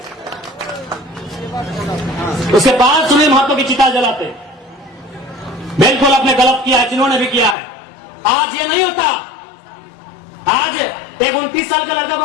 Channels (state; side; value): drops out; right; at 7.6 s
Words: उसके बाद सुनील महतो की चिता जलाते। बिल्कुल आपने गलत किया है, जिन्होंने भी किया है। आज ये नहीं होता। आज एक 29 साल के लड़का को